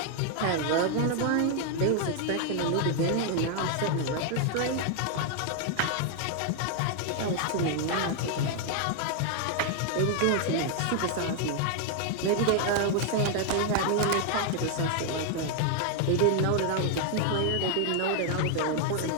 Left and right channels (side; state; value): both; different; correlation 0.00